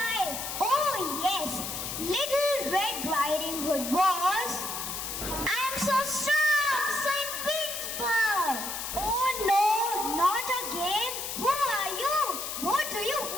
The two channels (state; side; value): noise; left; hiss, 5 dB below the sound